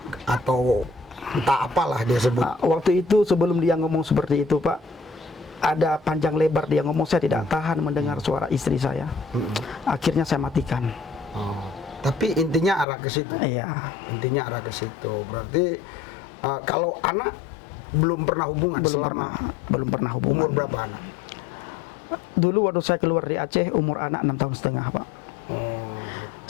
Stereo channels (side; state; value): right; drops out; at 12.9 s